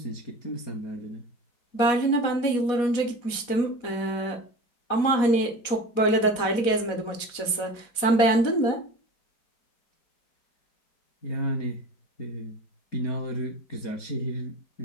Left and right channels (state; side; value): late; right; 4.2 ms